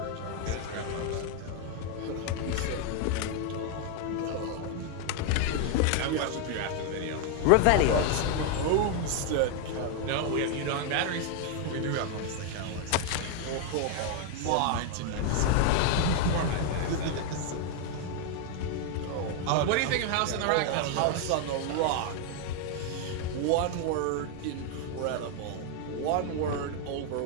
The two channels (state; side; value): different; both; correlation 0.01